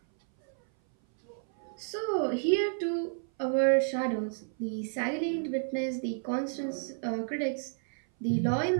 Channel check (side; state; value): left; silent; 57 dB below the other